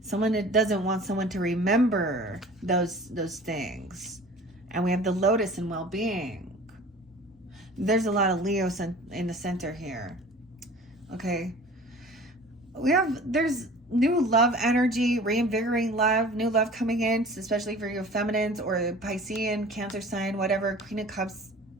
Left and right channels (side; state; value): both; normal; correlation 0.44